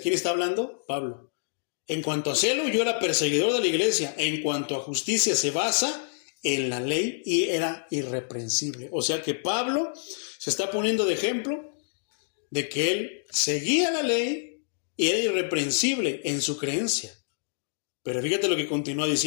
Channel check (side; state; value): right; silent; digital silence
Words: ¿Quién está hablando? Pablo. En cuanto a celo, yo era perseguidor de la iglesia. En cuanto a justicia, se basa en la ley y era irreprensible. O sea que Pablo se está poniendo de ejemplo de que él seguía la ley y era irreprensible en su creencia. Pero fíjate lo que continúa